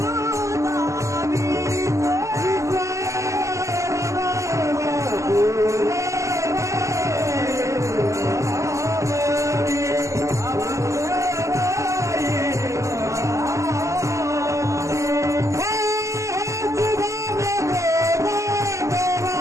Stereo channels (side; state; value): left; late; 0.15 ms